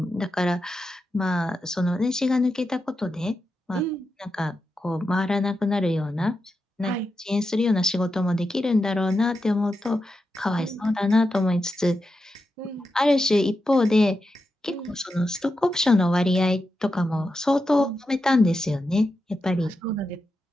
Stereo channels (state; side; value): normal; both; correlation 0.88